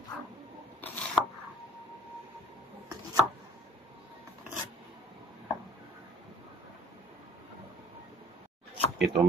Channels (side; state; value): both; normal; correlation 0.54